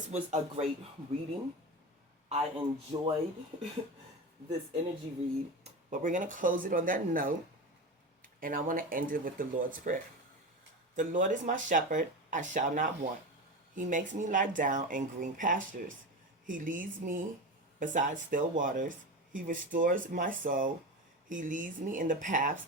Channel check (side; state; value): both; normal; correlation 0.24